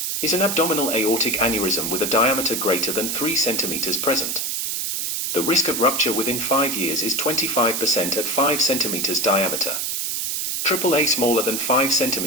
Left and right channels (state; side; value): noise; right; hiss, 1 dB below the sound